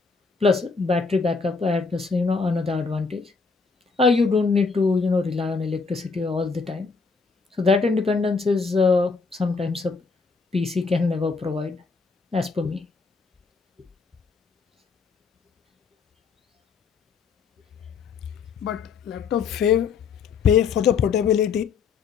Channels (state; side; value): quieter; right; 4.8 dB